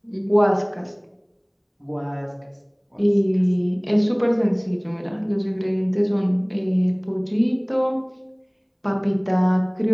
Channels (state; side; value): identical; both; correlation 1.00